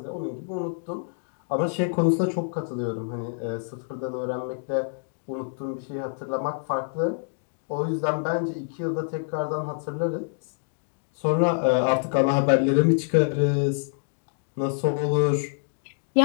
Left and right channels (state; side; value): silent; right; digital silence